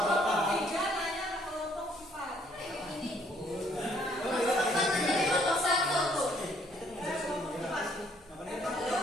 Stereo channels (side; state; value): both; normal; correlation 0.65